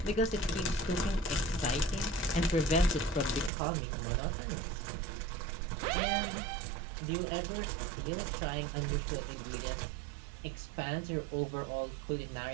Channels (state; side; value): drops out; left; at 3.5 s